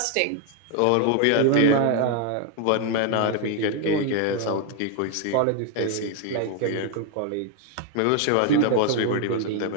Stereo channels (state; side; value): different; both; correlation 0.01